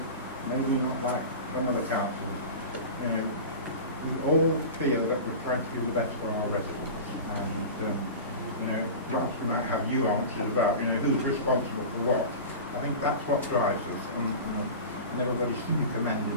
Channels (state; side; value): inverted; both; correlation -0.31